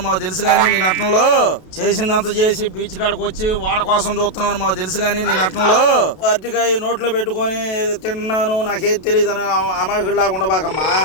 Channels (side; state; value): right; late; 32 ms